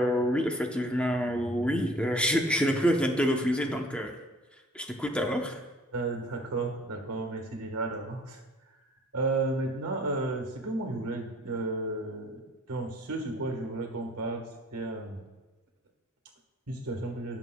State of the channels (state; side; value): normal; both; correlation 0.55